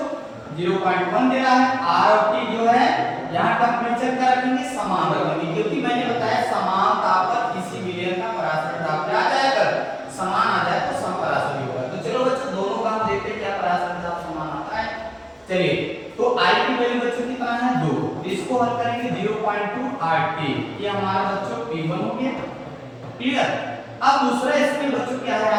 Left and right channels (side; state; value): both; identical; correlation 1.00